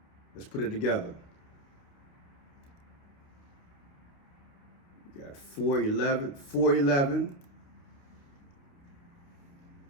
Let's put it together. We got 4/11,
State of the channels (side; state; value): right; late; 29 ms